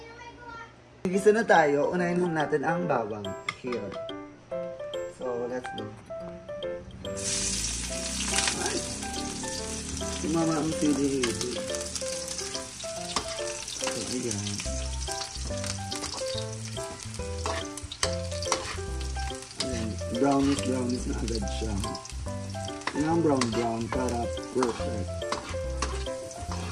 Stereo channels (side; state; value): both; identical; correlation 1.00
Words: Gisa na tayo. Unahin muna natin ang bawang. Here. So, let's go. Ay. Sumama ang sili. So, ayan. Brownish na agad siya. Yan ang brown para perfect.